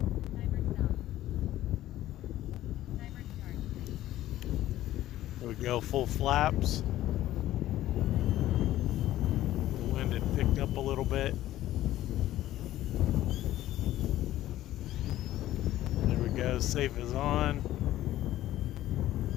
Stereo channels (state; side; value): quieter; right; 14.2 dB